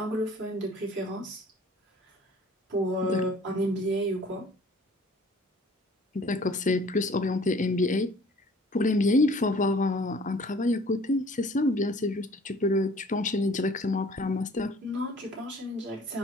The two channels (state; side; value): normal; both; correlation 0.53